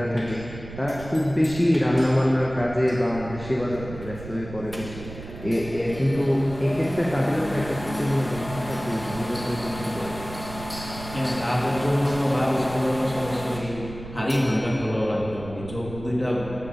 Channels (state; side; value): noise; right; rumble, 13 dB below the sound